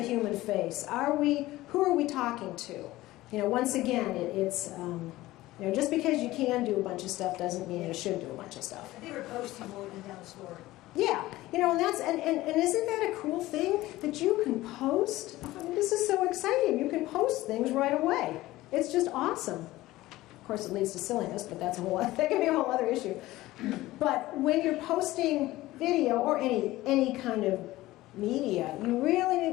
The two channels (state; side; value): quieter; right; 17.3 dB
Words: human face? Who are we talking to? You know, once again, it's you know, just because you can do a bunch of stuff doesn't mean you should do a bunch of stuff. I think we're posting more than down the story. Yeah, you know, and isn't that a cool thing that you can post? I mean, this is so exciting. You can post things right away. It's just awesome. Of course, it leads to silliness, but that can be a whole other issue. But when you're posting video or any kind of media, you really